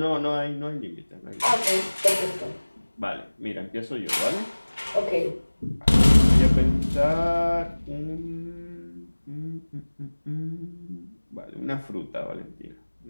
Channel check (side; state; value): both; inverted; correlation -1.00